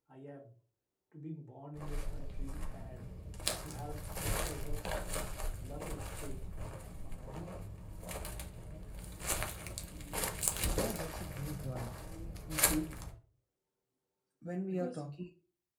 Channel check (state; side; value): identical; both; correlation 1.00